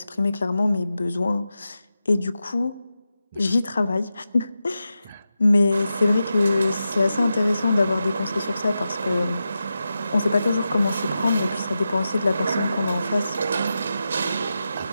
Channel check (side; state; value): both; inverted; correlation -0.91